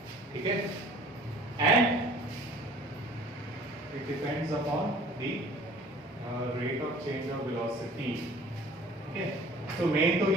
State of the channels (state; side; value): normal; both; correlation 0.50